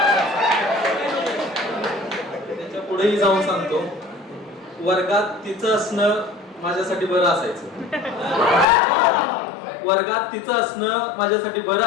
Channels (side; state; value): right; drops out; at 8.7 s